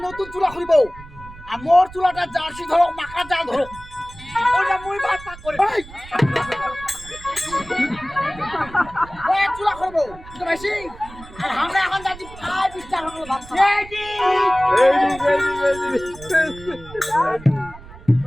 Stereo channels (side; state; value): right; noise; rumble, 18 dB below the sound